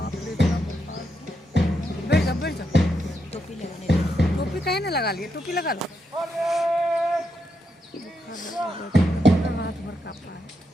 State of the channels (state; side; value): normal; both; correlation 0.82